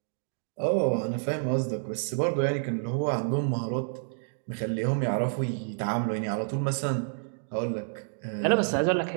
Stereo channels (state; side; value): silent; left; digital silence